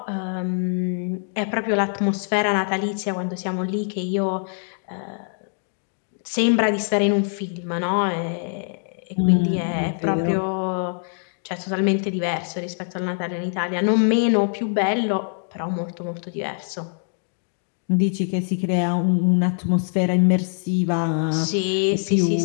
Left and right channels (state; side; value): silent; right; 63 dB below the other